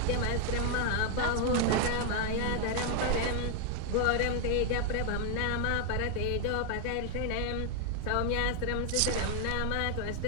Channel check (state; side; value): different; both; correlation 0.00